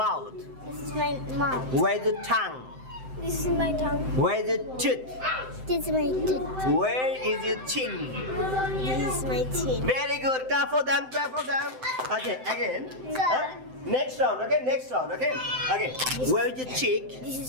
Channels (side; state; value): left; late; 7.8 ms